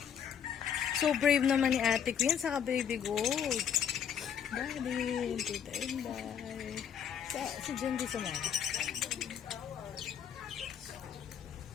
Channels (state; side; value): quieter; right; 8.4 dB